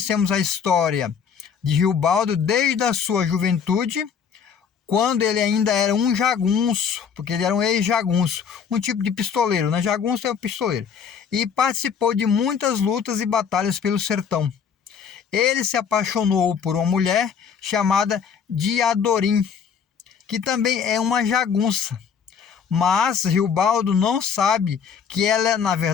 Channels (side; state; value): right; quieter; 7.0 dB